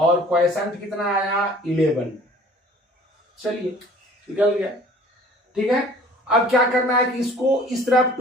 क्वाइसेंट कितना आया 11, चलिए निकल गया, ठीक है। अब क्या करना है कि इसको इस तरफ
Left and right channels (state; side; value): normal; both; correlation 0.50